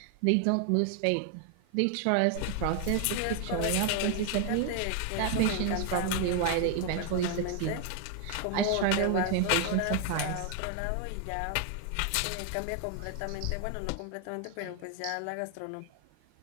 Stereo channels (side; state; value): both; different; correlation 0.00